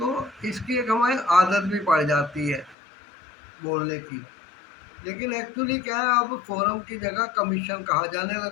इसकी एक हमें आदत भी पड़ जाती है बोलने की। लेकिन एक्चुअली क्या है, अब फोरम की जगह कमीशन कहा जाने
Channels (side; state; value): right; drops out; at 2.8 s